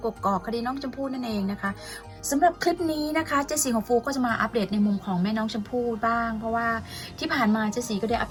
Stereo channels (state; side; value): identical; both; correlation 1.00